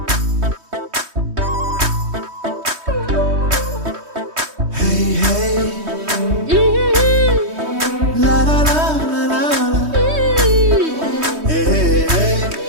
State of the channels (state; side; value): late; left; 3.2 ms